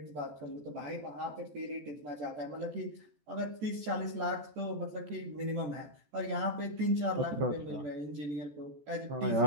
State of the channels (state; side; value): late; left; 14 ms